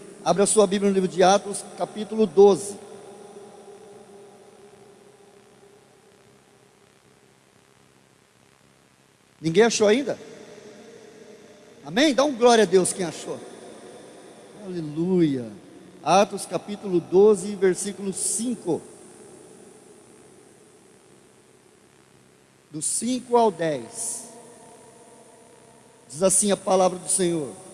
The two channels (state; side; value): identical; both; correlation 1.00